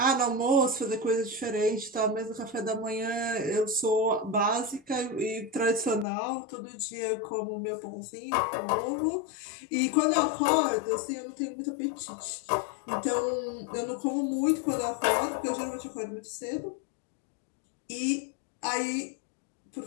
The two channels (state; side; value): drops out; right; at 6.1 s